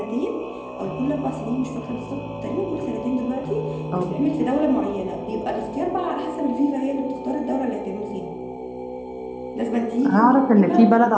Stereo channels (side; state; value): both; identical; correlation 1.00